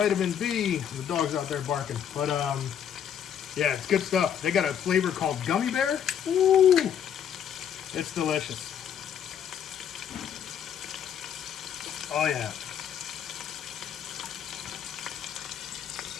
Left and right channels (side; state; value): right; quieter; 8.8 dB